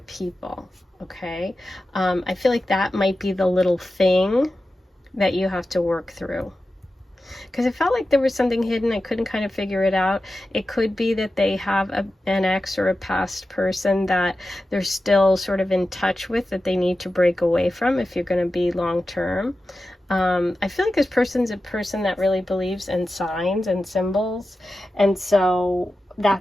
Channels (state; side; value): normal; both; correlation 0.93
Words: Okay, I feel like that might be the little thing that you have to work through, because it felt like there was something hidden. I couldn't kind of figure it out. It could be that they have an ex or a past person that they're still sort of in touch with, that they need to break away from if you're going to be long term. I feel like this person's a person that really believes in signs and symbols, and so